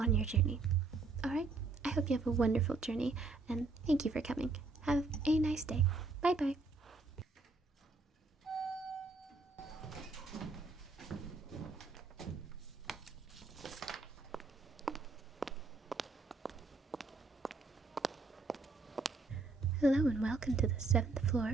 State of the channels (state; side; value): quieter; left; 3.7 dB